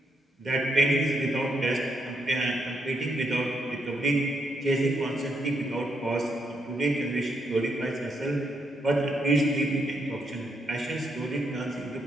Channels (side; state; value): both; normal; correlation 0.78